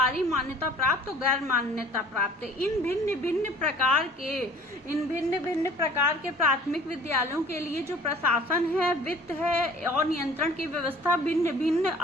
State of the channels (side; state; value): both; normal; correlation 0.50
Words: मान्यता प्राप्त और गैर मान्यता प्राप्त। इन भिन्न भिन्न प्रकार के प्राथमिक विद्यालयों के लिए जो प्रशासन है, वित्त है और नियंत्रण की व्यवस्था भिन्न भिन्न